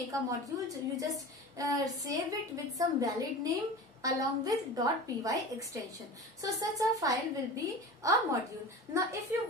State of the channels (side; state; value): both; normal; correlation 0.33